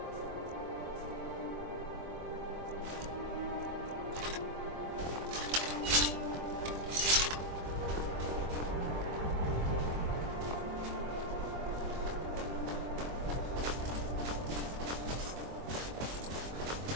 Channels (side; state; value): left; late; 24 ms